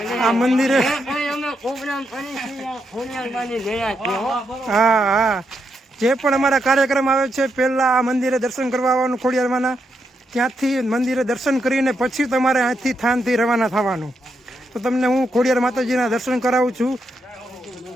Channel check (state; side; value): normal; both; correlation 0.81